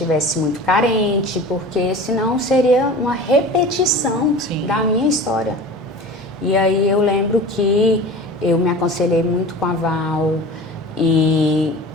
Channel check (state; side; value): normal; both; correlation 0.37